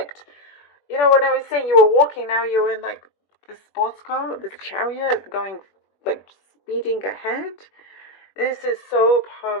You know, when I was saying you were walking, now you're in like the sports car, the Chariot, going like speeding ahead. This is so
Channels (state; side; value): late; right; 20 ms